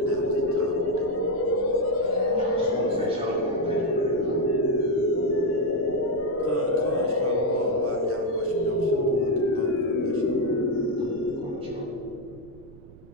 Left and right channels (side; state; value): right; noise; rumble, 21 dB below the sound